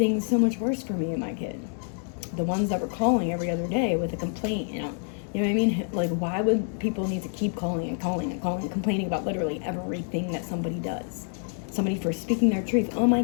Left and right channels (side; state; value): right; silent; 55 dB below the other